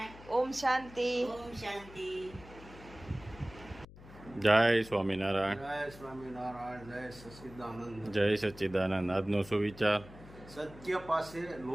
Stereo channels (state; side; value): noise; left; hum, 18 dB below the sound